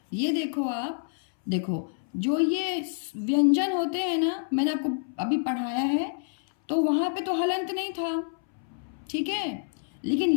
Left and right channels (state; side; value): silent; right; 60 dB below the other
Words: ये देखो आप, देखो जो ये व्यंजन होते हैं ना, मैंने आपको अभी पढ़ाया है, तो वहाँ पे तो हलंत नहीं था, ठीक है, लेकिन